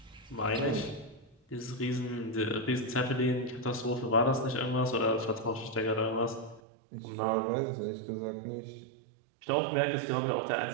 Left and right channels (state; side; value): drops out; left; at 6.6 s